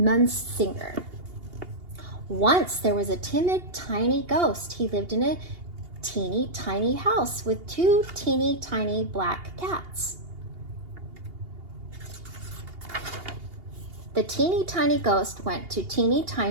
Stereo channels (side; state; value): left; late; 2.8 ms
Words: Once there was a timid, tiny ghost. He lived in a teeny tiny house with two teeny tiny black cats. The teeny tiny ghost went to teeny